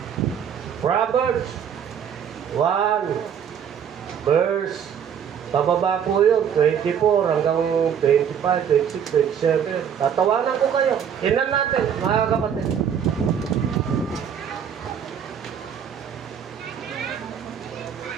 Proverbs 1 verse pababa po yun, 24 hanggang 25, 26, 27. Tatawanan ko kayo. Tingnan natin, mga kapatid.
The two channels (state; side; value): quieter; left; 8.1 dB